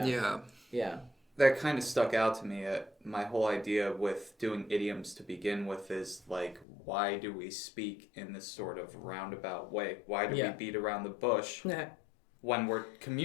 That kind of stuck out to me. My whole idea with doing idioms to begin with is like, why do we speak in this sort of roundabout way? Why do we beat around the bush when we're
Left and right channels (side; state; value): right; drops out; at 6.7 s